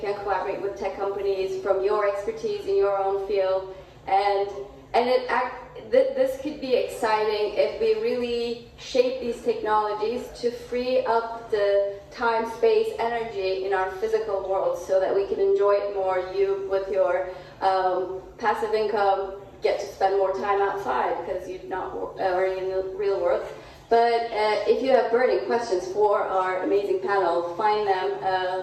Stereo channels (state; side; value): identical; both; correlation 1.00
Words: collaborate with tech companies from your expertise in your own field, and this could be exciting if we really shape these technologies to free up the time, space, energy in our physical world, so that we can enjoy it more. You with your passive income get to spend more time outside because you're not already in the real world. But if you have burning questions for our amazing panel, find them